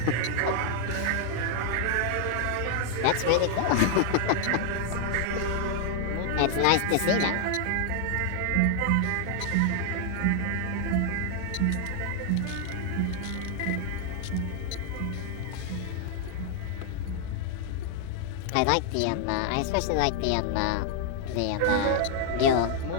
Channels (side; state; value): both; different; correlation 0.00